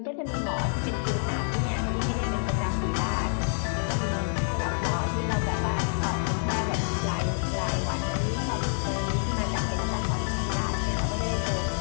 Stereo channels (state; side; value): silent; right; 60 dB below the other